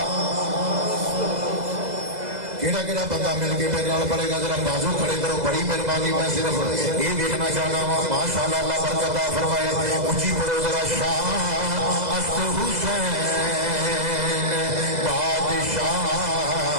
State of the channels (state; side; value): late; left; 2.0 ms